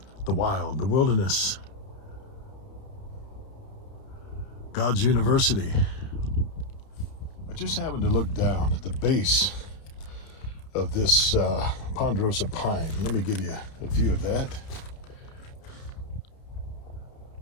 the wild, the wilderness, God's university. I just happened to look down at the base of this ponderosa pine. Let me give you a view of that.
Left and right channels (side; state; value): right; late; 31 ms